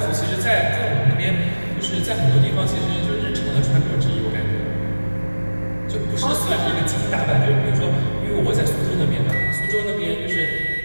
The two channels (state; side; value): inverted; both; correlation -1.00